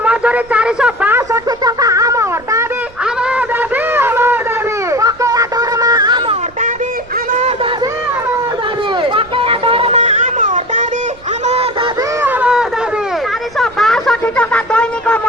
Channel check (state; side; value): noise; right; rumble, 25 dB below the sound